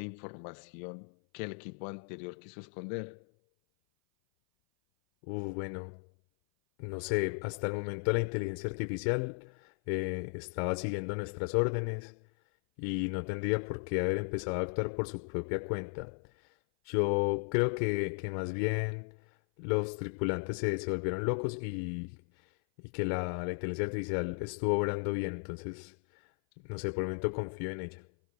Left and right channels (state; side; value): silent; right; 54 dB below the other